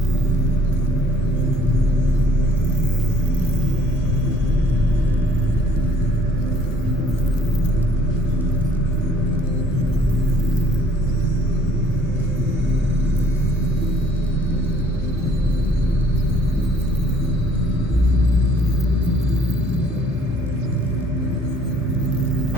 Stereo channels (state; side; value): normal; both; correlation 0.58